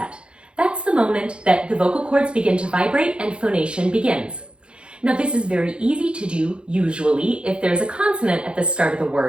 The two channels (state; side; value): late; left; 0.056 ms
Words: That's the moment that the vocal cords begin to vibrate and phonation begins. Now this is very easy to do, usually, if there's a consonant at the start of the